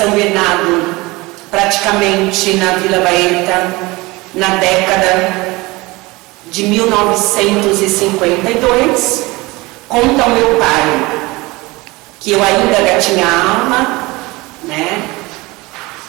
Bernardo, praticamente na Vila Baeta, na década de 1952. Conta o meu pai que eu ainda gatinhava, né?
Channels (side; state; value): left; quieter; 22.6 dB